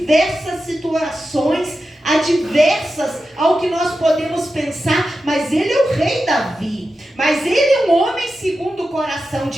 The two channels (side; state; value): both; normal; correlation 0.91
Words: situações adversas ao que nós podemos pensar, mas ele é o rei Davi, mas ele é um homem segundo o coração